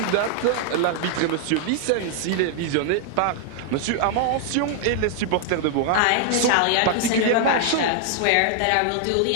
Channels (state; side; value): different; both; correlation 0.00